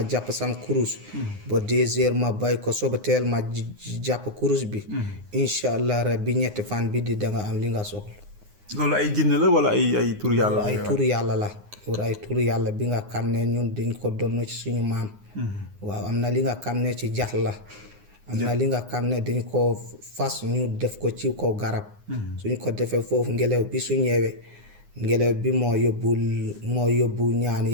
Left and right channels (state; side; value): late; left; 9.7 ms